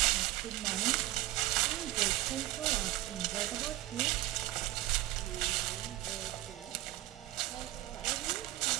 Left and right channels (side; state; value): left; quieter; 16.9 dB